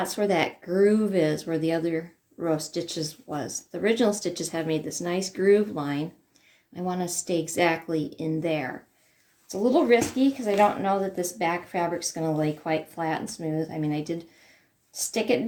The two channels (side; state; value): both; identical; correlation 1.00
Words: where that groove is, where the other row of stitches was. The original stitches have made this nice groove line. I want to stay exactly in there. It's a little risky because I don't know that this back fabric's going to lay quite flat and smooth. I mean, I did stick it